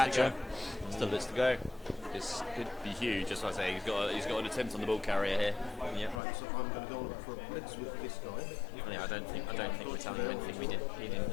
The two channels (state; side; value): drops out; right; at 6.2 s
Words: catcher. go. Still bits to go. This could be huge. Just like I say, he's got an attempt on the ball carrier here. Yeah. Right, so I'm going to go on for a blitz with this guy. Yeah, I don't think we're telling him anything he didn't